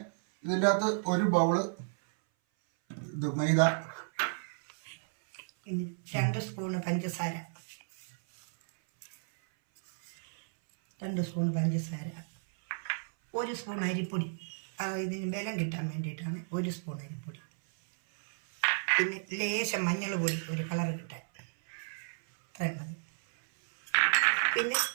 ഇതിൻ്റെ അകത്ത് ഒരു ബൗള് മൈദ, 2 സ്പൂണ് പഞ്ചസാര, 2 സ്പൂൺ പഞ്ചസാര, 1 സ്പൂൺ അരിപ്പൊടി. ഇതിന് ബലം കിട്ടാൻ വേണ്ടിയിട്ടാണ് 1 സ്പൂൺ അരിപ്പൊടി. പിന്നെ ലേശം മഞ്ഞൾ പൊടി, ഒരു കളർ കിട്ടാൻ, അത്രയും മതി. പിന്നെ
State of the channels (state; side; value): silent; left; 56 dB below the other